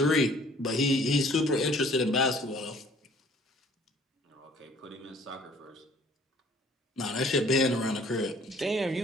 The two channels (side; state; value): both; normal; correlation 0.56